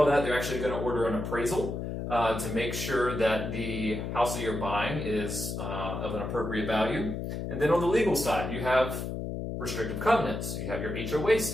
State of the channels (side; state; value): left; noise; hum, 4 dB below the sound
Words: that. They're actually going to order an appraisal to make sure that the house that you're buying is of an appropriate value. And then on the legal side, you have restrictive covenants. You have your HOA